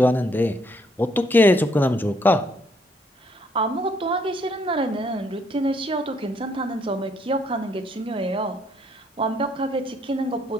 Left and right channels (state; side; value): normal; both; correlation 0.69